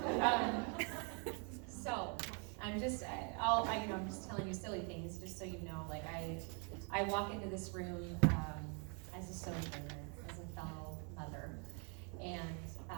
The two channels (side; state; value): left; quieter; 37.0 dB